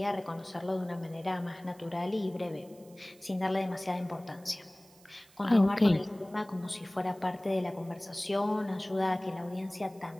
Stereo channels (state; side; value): noise; right; hiss, 26 dB below the sound